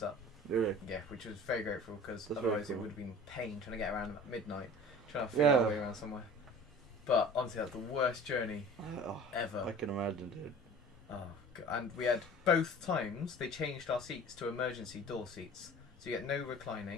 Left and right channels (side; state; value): both; normal; correlation 0.43